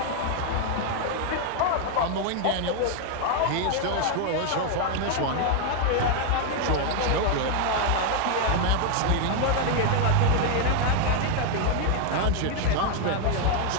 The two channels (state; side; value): different; both; correlation 0.01